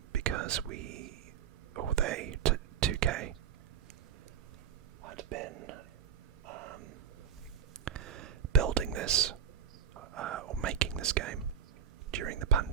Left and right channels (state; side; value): quieter; left; 7.8 dB